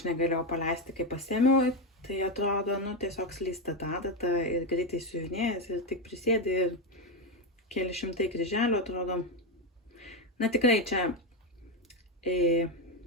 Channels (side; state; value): both; normal; correlation 0.10